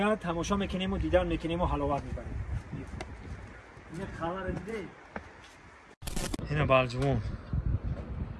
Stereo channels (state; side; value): identical; both; correlation 1.00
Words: تماشا میکنیم و دیدن میکنیم و حلاوت میبریم. این خبر دیده اینه بالجوان،